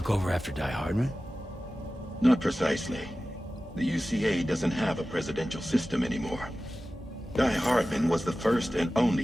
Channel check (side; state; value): both; normal; correlation 0.95